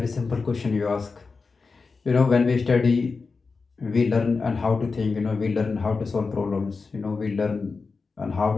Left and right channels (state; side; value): quieter; right; 4.5 dB